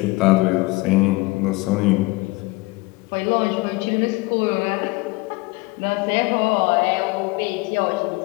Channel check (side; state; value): right; quieter; 23.1 dB